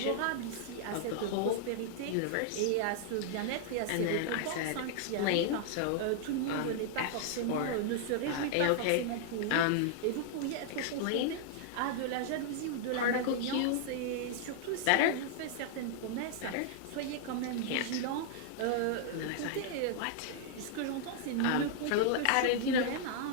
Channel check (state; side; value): different; both; correlation -0.01